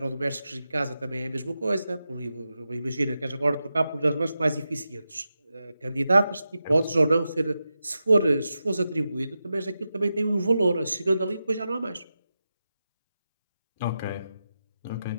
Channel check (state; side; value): inverted; both; correlation -0.90